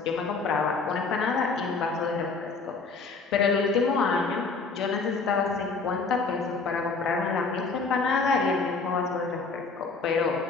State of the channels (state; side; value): quieter; right; 4.3 dB